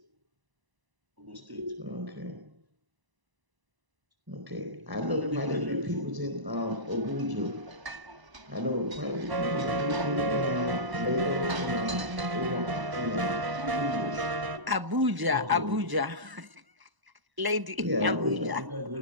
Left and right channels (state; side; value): late; left; 1.0 ms